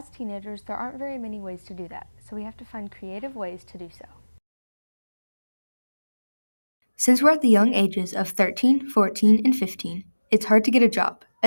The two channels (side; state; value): both; inverted; correlation -1.00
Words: teenagers, there aren't very many ways to do that, so we have to find creative ways to do so. Since we're at the young ages of 13, 14, and 15, it's hard to get a job,